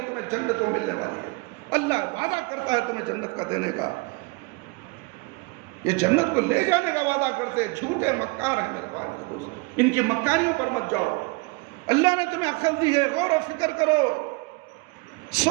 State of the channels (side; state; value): left; quieter; 27.2 dB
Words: تمہیں جنت میں ملنے والی ہے. اللہ وعدہ کرتا ہے تمہیں جنت کا دینے کا، یہ جنت کو لے جانے کا وعدہ کرتے. جھوٹے مکار ہیں میرے بھائی میرے دوست، ان کی مکاریوں پر مت جاؤ. اللہ نے تمہیں عقل دی ہے، غور و فکر کرو،